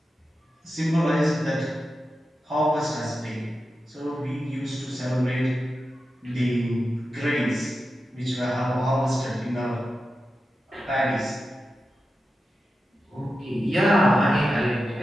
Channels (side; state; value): both; normal; correlation 0.91